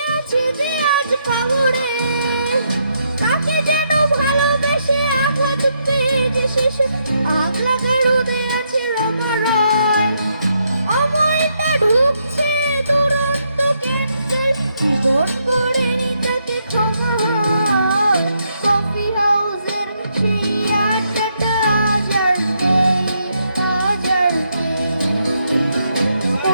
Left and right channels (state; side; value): inverted; both; correlation -0.77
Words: আছে যে আজ কবরে। তাকে যেন ভালোবেসে আগলা চুপে যে শেষে আগলা গাড়ুদে আছে রমা রয়। অমলটা ঢুকছে দুরন্ত কেন্দ্রের জীবন গড়ে তাকে ক্ষমা হয়। কফি হাউসের সেই আড্ডাটা আজ আর নেই, আজ আর নেই।